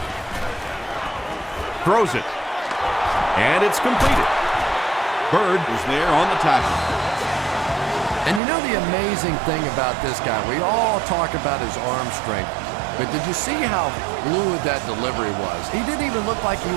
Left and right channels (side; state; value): left; drops out; at 8.4 s